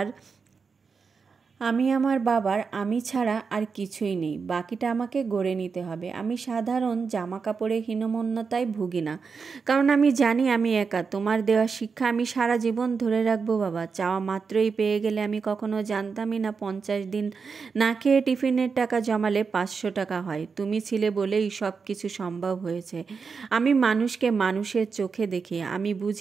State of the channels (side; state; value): left; quieter; 5.3 dB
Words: বাবার আমি ছাড়া আর কিছুই নেই, বাকিটা আমাকে গড়ে নিতে হবে। আমি সাধারণ জামা কাপড়ে হীনমন্যতায় ভুগি না, কারণ আমি জানি আমি একা। তোমার দেওয়া শিক্ষা আমি সারা জীবন ধরে রাখবো বাবা। চাওয়া মাত্রই পেয়ে গেলে আমি কখনো জানতামই না 50 দিন না খেয়ে টিফিনের টাকা জমালে 500 টাকা হয়। তুমি ছিলে বলেই সব কিছু সম্ভব হয়েছে। আমি মানুষকে মানুষের চোখে দেখি, আমি